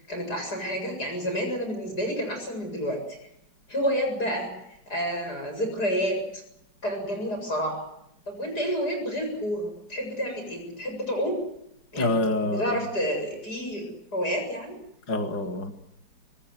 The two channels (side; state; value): right; late; 4.9 ms